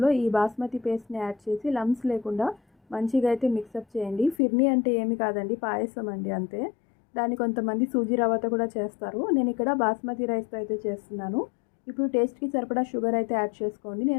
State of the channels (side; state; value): right; drops out; at 4.4 s